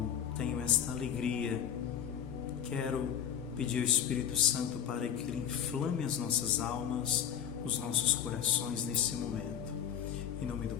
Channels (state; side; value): quieter; right; 9.1 dB